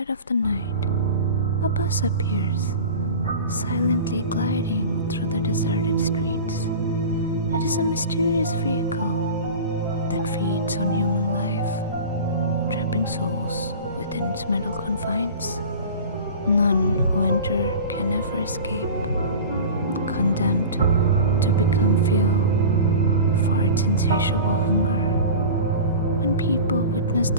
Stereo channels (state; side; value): inverted; both; correlation -0.35